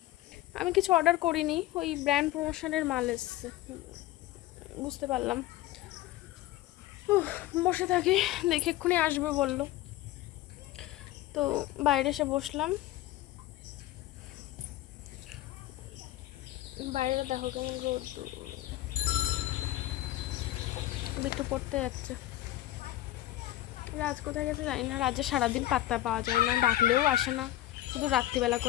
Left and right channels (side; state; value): right; quieter; 15.2 dB